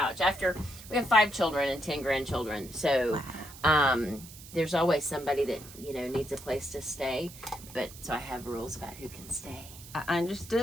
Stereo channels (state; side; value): noise; right; hiss, 17 dB below the sound